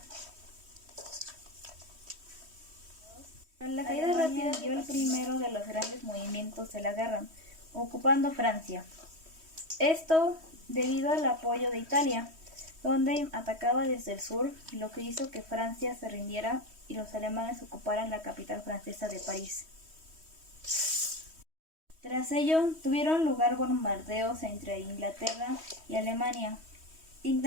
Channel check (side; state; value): left; late; 3.1 ms